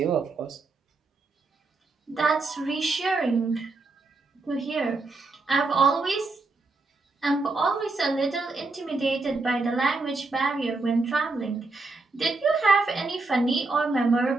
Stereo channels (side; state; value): left; quieter; 3.6 dB